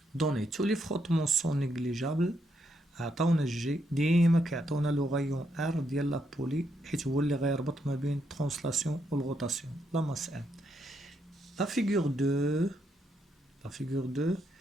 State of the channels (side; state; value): both; normal; correlation 0.78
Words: Données. Tous les frottements sont négligeables. عطاونا الجي ديما كيعطونا لو غايون ار ديال لا بولي حيت هو اللي غيربط ما بين الترانسلاسيون والغوتاسيون. لا ماس ام. La figure 2